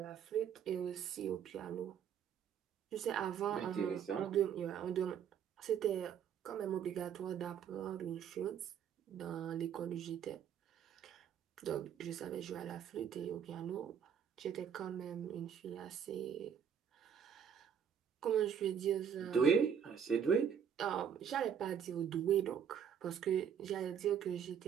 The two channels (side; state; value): left; quieter; 8.2 dB